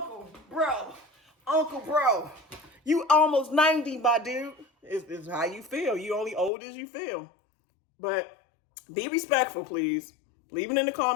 bro. You almost 90, my dude. It's how you feel. You only old as you feel. But be respectful, please. Leave it in the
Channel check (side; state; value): right; drops out; at 6.5 s